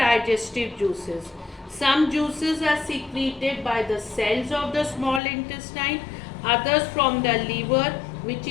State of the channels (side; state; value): right; drops out; at 5.2 s